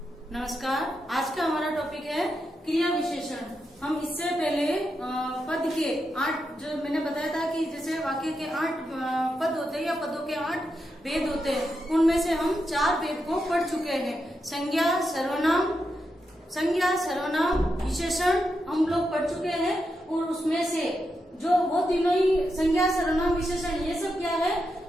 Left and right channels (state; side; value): normal; both; correlation 0.86